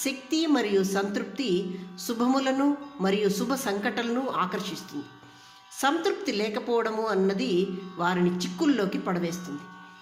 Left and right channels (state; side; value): identical; both; correlation 1.00